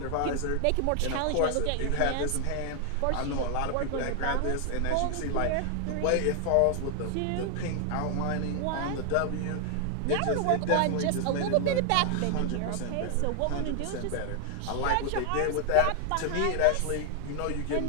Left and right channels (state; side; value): different; both; correlation 0.00